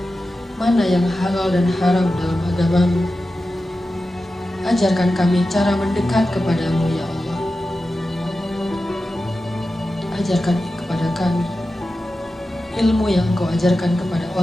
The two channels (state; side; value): normal; both; correlation 0.93